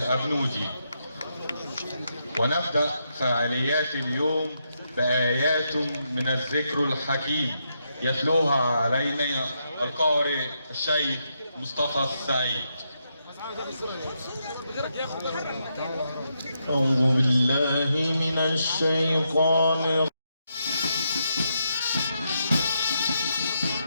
ونبدأ فعاليات اليوم بآيات من الذكر الحكيم يتلوها علينا القارئ الشيخ مصطفى السعيد. أعوذ بالله من الشيطان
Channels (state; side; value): inverted; both; correlation -0.81